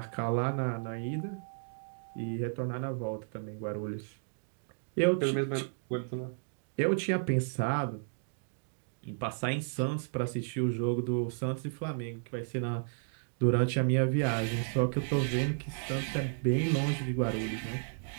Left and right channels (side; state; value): left; silent; digital silence